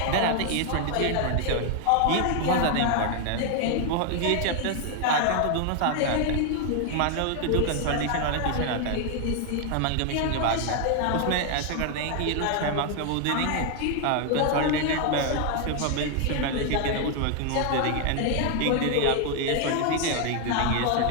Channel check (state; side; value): different; both; correlation 0.00